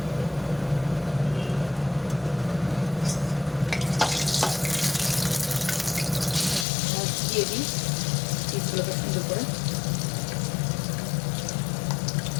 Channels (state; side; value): drops out; right; at 6.7 s